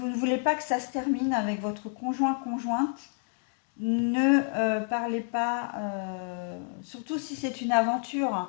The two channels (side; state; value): right; silent; 58 dB below the other